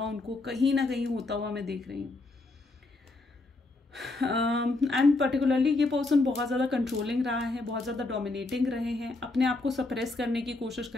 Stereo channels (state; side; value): quieter; right; 3.2 dB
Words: उनको कहीं ना कहीं होता हुआ मैं देख रही हूँ। एंड पर्टिकुलरली ये पर्सन बहुत ज़्यादा कंट्रोलिंग रहा है, बहुत ज़्यादा डोमिनेटिंग रहे हैं, अपने आप को सप्रेस करने की कोशिश कर